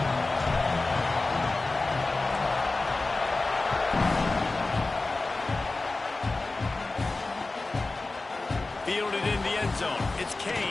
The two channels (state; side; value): quieter; right; 3.4 dB